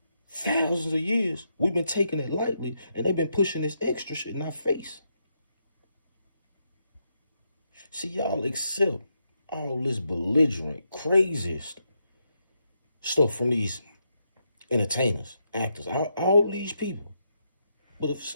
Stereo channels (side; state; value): both; inverted; correlation -0.81